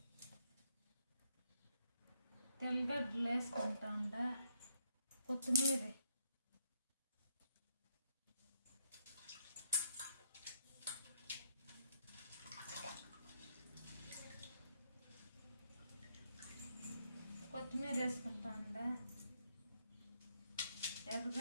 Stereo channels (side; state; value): both; inverted; correlation -0.74